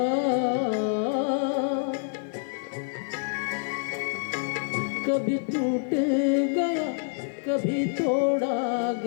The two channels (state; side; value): silent; right; digital silence